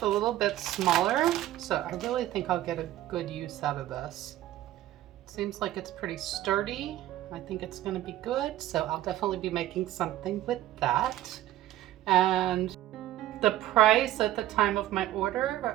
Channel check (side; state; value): left; quieter; 14.2 dB